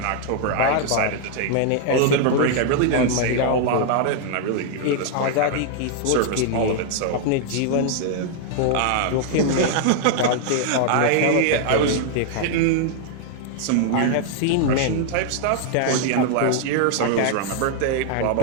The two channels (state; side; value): different; both; correlation 0.00